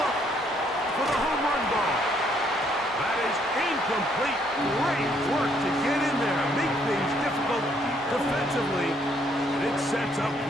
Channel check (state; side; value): normal; both; correlation 0.68